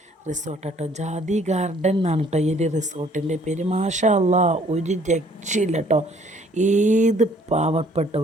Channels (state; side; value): normal; both; correlation 0.60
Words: റിസോർട്ടാട്ടോ, ജാതി ഗാർഡൻ എന്നാണ് കേട്ടോ ഈ ഒരു റിസോർട്ടിൻ്റെ പേര്. മാഷാ അല്ലാ, ഒരു രക്ഷയില്ല കേട്ടോ. ഏത്